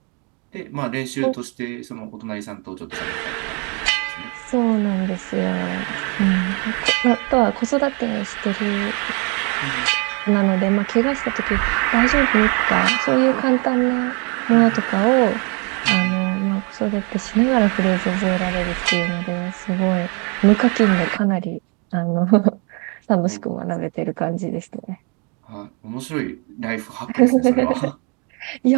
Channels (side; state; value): left; quieter; 33.9 dB